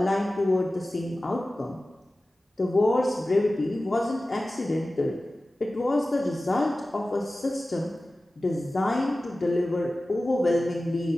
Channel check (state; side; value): normal; both; correlation 0.96